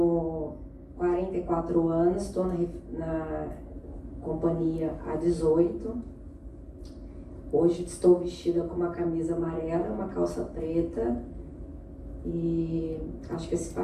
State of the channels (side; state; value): both; identical; correlation 1.00